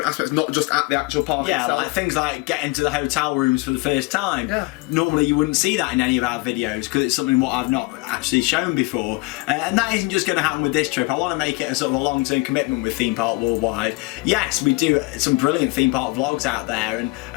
aspects, not just at the actual park itself. Like things like getting to the hotel rooms for the first time. Yeah. Normally you wouldn't see that in any of our videos, because it's something what I've not actually shown before, and that isn't just going to happen with this trip. I want to make it a sort of a long-term commitment with Theme Park Worldwide. Yes, we do some brilliant theme park vlogs out there,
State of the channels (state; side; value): quieter; right; 24.5 dB